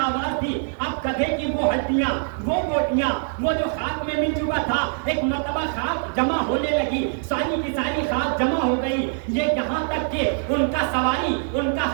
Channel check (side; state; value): left; silent; digital silence